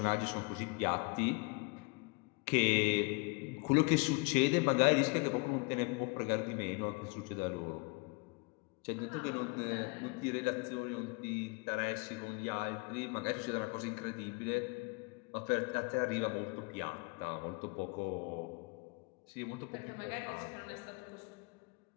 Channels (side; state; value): right; quieter; 29.8 dB